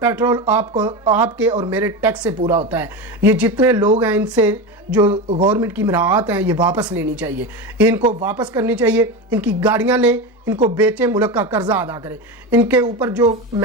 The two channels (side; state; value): both; normal; correlation 0.21